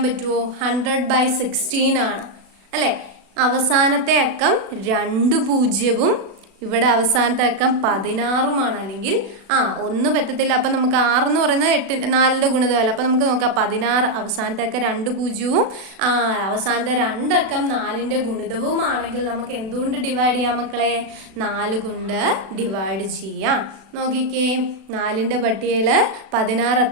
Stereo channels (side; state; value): left; late; 36 ms